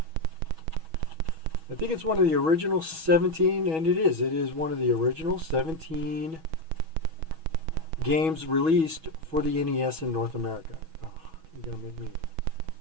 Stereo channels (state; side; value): late; left; 6.2 ms